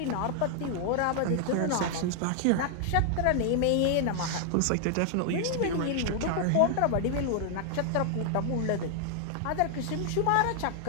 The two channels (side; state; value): both; different; correlation 0.00